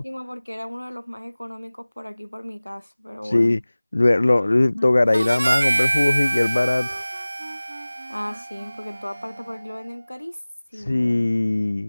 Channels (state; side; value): inverted; both; correlation -0.99